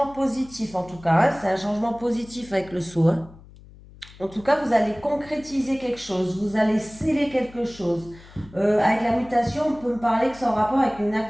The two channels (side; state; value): left; noise; hum, 21 dB below the sound